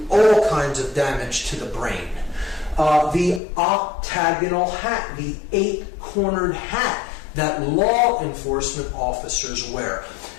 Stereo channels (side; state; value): right; drops out; at 3.4 s